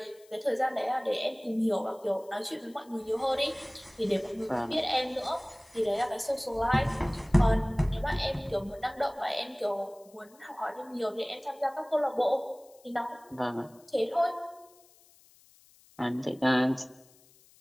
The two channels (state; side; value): noise; left; hiss, 28 dB below the sound